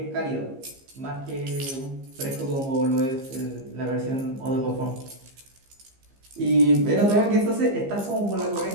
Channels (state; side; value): late; left; 15 ms